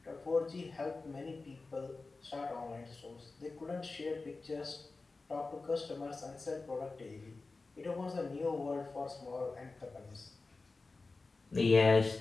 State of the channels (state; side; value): quieter; right; 3.7 dB